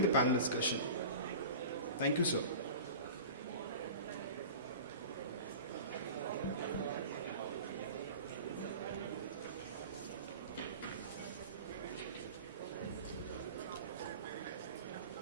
the panel discussion. Thank you, sir.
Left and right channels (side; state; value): both; inverted; correlation -0.36